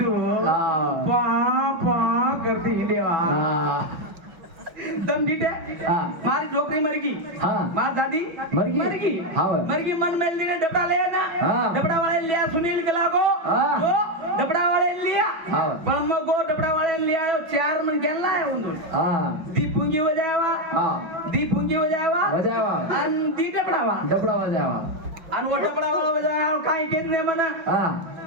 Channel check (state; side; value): late; left; 5.8 ms